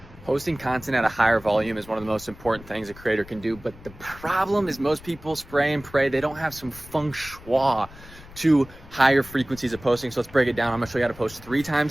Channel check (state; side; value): noise; left; rumble, 19 dB below the sound